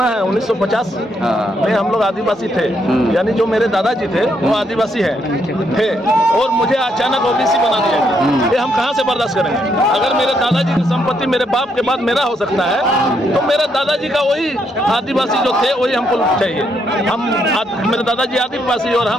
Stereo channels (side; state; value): both; normal; correlation 0.75